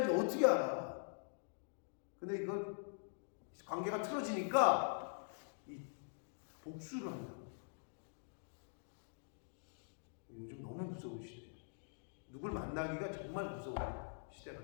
어떻게 알아. 근데 이거 관계가 틀어지니까 이 복수를 한다. 요즘 너무 무서운 시대예요. 누굴 만나기가 정말 무서운 시대가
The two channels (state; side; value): silent; right; digital silence